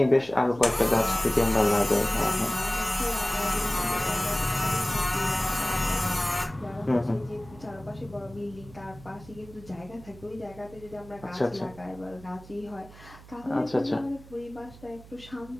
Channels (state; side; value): noise; right; hum, 20 dB below the sound